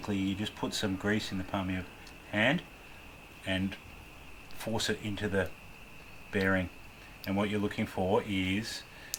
you just put some grease in the palm of your hand, and force it into the bearing. And what you're looking for is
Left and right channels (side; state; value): both; identical; correlation 1.00